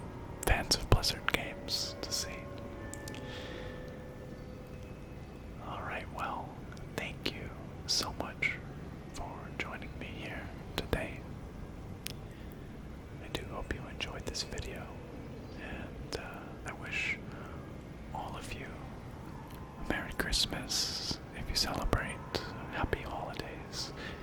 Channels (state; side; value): identical; both; correlation 1.00